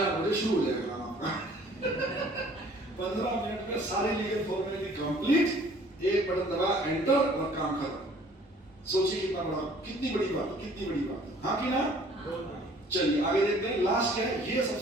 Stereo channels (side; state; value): both; normal; correlation 0.55